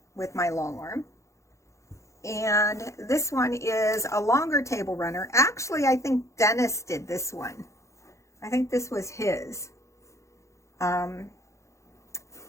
with my Longarm. And this one is a longer table runner. Actually, I think Dennis did this one. I think this was his. And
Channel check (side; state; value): right; late; 0.14 ms